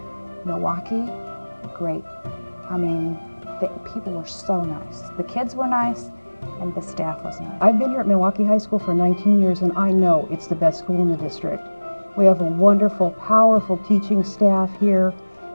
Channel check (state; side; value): inverted; both; correlation -1.00